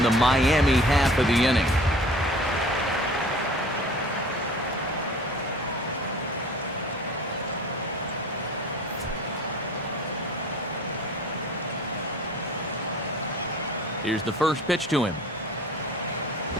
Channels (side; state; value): both; normal; correlation 0.45